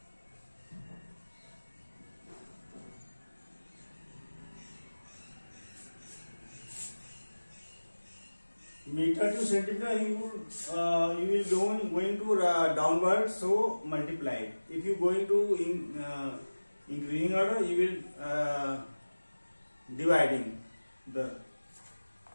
Meter to centimeter, you will going to downward, so multiply. If you going to increasing order, you will dividing the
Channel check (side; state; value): both; inverted; correlation -1.00